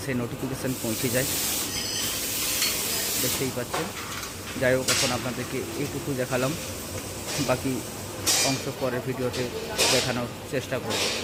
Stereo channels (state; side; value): identical; both; correlation 1.00